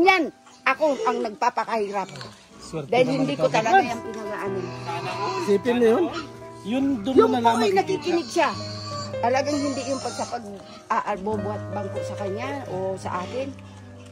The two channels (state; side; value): identical; both; correlation 1.00